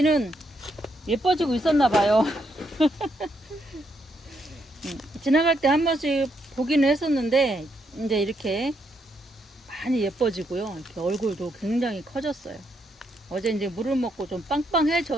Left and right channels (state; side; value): normal; both; correlation 0.77